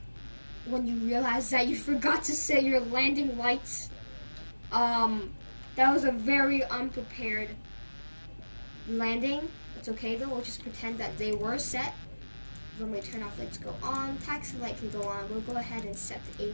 when you realize that you forgot to set your landing lights. That was a very unprepared landing. It's okay though, we'll just pretend that they were set. Runway turn-off lights go on, taxi light can go on. We'll go ahead and set the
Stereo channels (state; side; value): inverted; both; correlation -1.00